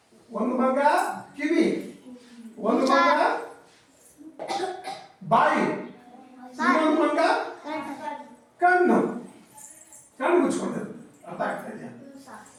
ಒಂದು ಮಂಗ, ಕಿವಿ ಒಂದು ಮಂಗ, ಬಾಯಿ ಇನ್ನೊಂದು ಮಂಗ, ಕಣ್ಣು ಮುಚ್ಕೊಂಡಿರುತ್ತೆ. ಅರ್ಥ ಆಗ್ತಾ ಇದೆಯಾ?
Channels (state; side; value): identical; both; correlation 1.00